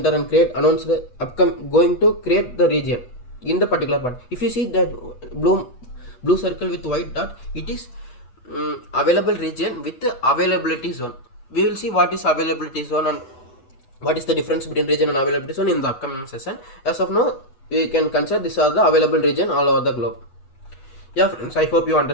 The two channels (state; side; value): late; right; 8.1 ms